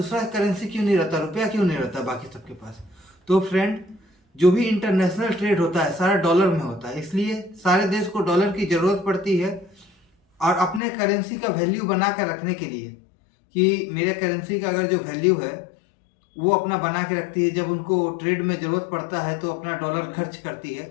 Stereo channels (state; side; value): drops out; right; at 10.8 s